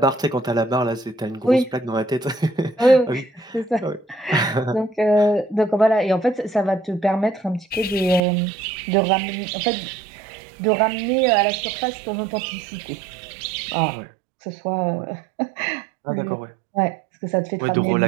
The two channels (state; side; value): drops out; left; at 8.2 s